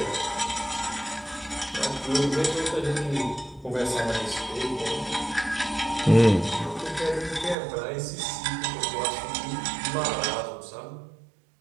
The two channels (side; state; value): left; drops out; at 7.6 s